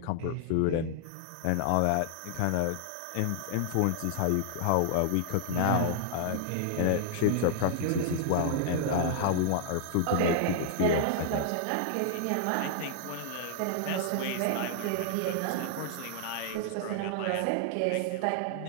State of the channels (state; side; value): different; both; correlation -0.01